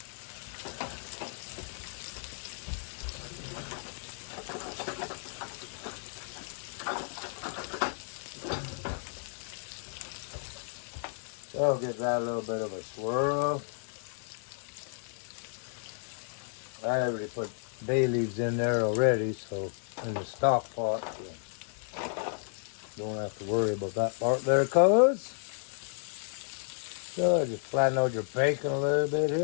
So I'll give that a little bit of a swirl. I already put bay leaves in there already, so in the stock pot, so don't have to worry about that part there, cuz. So just flatten out your bacon a little bit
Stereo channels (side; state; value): right; silent; digital silence